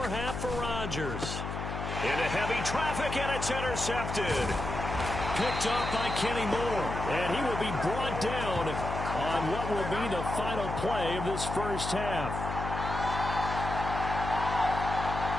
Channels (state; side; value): noise; left; hum, 5 dB below the sound